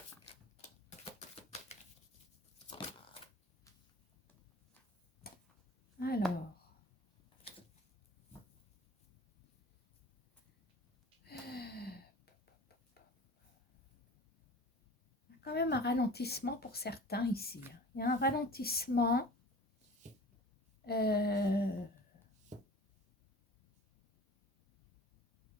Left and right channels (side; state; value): both; normal; correlation 0.41